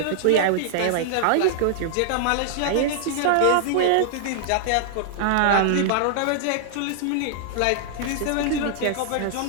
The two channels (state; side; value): different; both; correlation -0.01